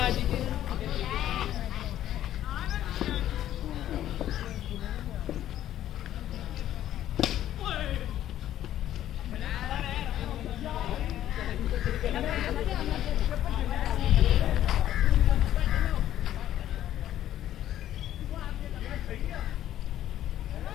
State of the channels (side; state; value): right; quieter; 12.1 dB